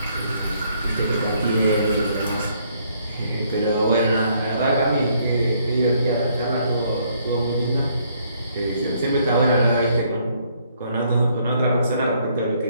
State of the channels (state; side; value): inverted; both; correlation -0.68